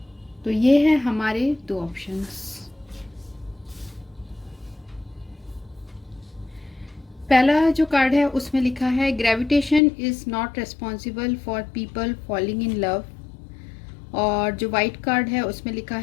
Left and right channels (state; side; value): drops out; right; at 9.8 s